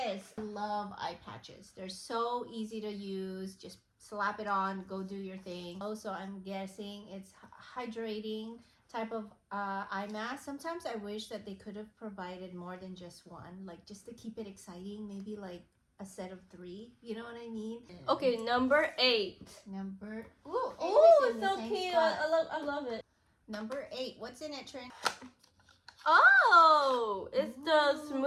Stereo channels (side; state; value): both; identical; correlation 1.00